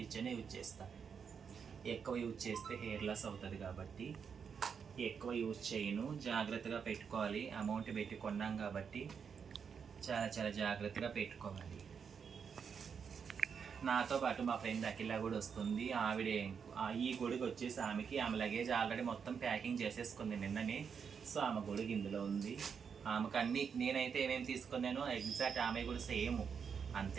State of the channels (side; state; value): left; quieter; 6.6 dB